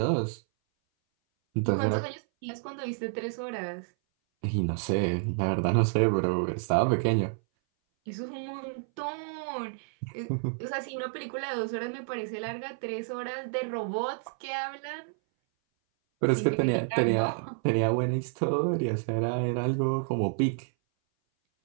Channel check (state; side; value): silent; left; 58 dB below the other